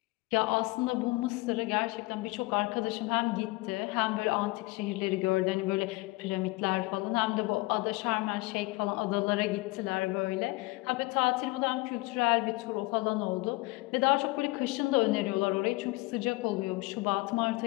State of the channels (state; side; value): quieter; right; 22.5 dB